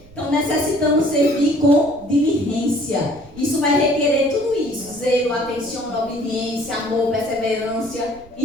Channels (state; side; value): noise; right; rumble, 23 dB below the sound